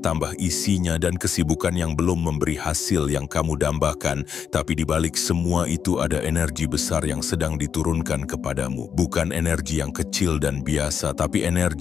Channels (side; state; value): right; quieter; 7.4 dB